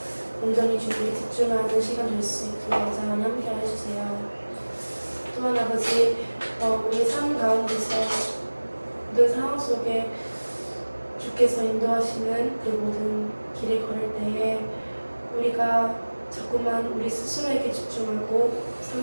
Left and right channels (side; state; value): both; inverted; correlation -1.00